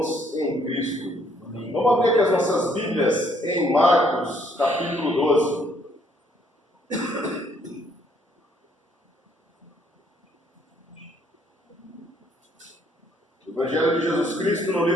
em Cristo. Vamos abrir aqui as nossas Bíblias em Marcos, capítulo 12. Evangelho de Jesus Cristo no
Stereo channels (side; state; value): both; normal; correlation 0.66